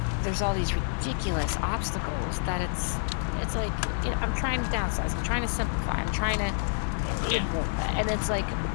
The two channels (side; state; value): right; silent; 59 dB below the other